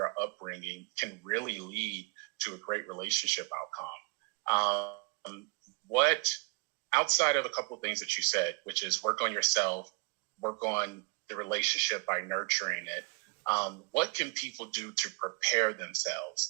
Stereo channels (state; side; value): quieter; left; 29.8 dB